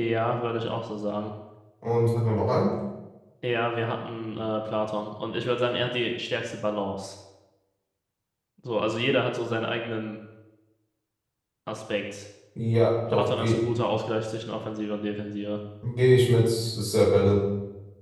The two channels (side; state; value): both; identical; correlation 1.00